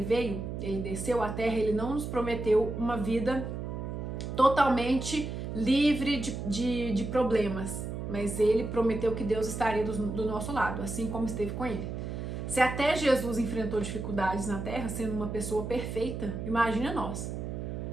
veio, ele desceu à terra, ele não nos prometeu uma vida totalmente livre de problemas, mas ele prometeu que Deus estaria do nosso lado, assim como esteve com ele. Se até Jesus enfrentou dificuldades na terra, sendo uma pessoa perfeita, imagina nós.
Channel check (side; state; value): right; noise; hum, 5 dB below the sound